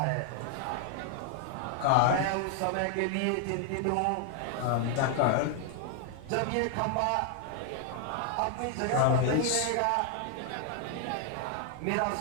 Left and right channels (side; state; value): both; different; correlation 0.00